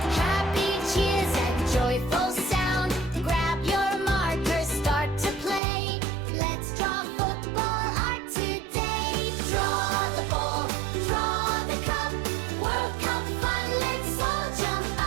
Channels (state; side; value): drops out; left; at 5.6 s